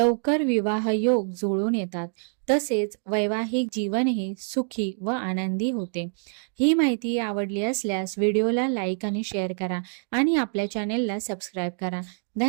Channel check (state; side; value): silent; left; 57 dB below the other